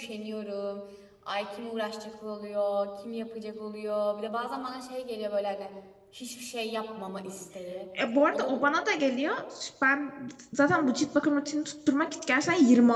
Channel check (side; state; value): both; identical; correlation 1.00